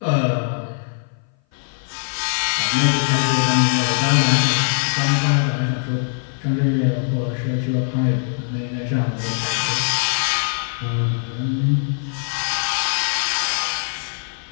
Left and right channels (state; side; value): silent; right; 58 dB below the other